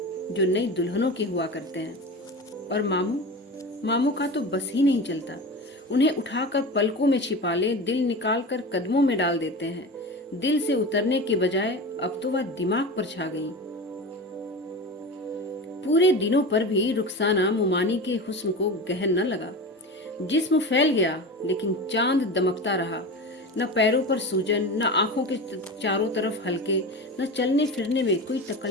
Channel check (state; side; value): normal; both; correlation 0.28